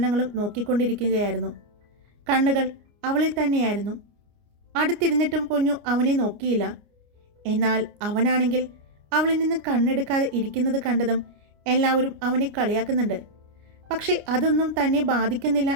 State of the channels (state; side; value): late; left; 29 ms